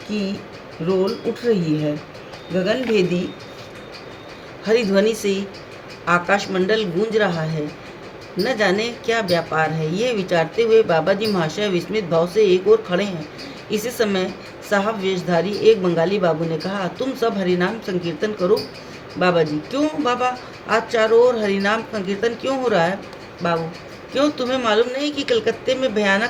की रोल उठ रही है। गगनभेदी हरिध्वनि से आकाशमंडल गूंज रहा है। न जाने क्या व्यापार है, ये विचारते हुए बाबा जी महाशय विस्मित भाव से एक ओर खड़े हैं। इसी समय साहब वेशधारी एक बंगाली बाबू ने कहा, तुम सब हरिनाम संकीर्तन करो। बाबा जी, क्यों बाबा, आज चारों ओर हरिनाम संकीर्तन क्यों हो रहा है? बाबू, क्यों तुम्हें मालूम नहीं कि कलकत्ते में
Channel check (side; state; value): both; identical; correlation 1.00